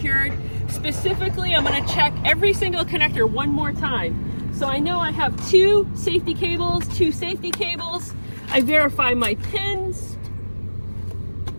Specifically, I'm going to check every single connector one more time. So I know I have 2 safety cables, 2 safety cables. I verify my pins.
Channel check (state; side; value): inverted; both; correlation -1.00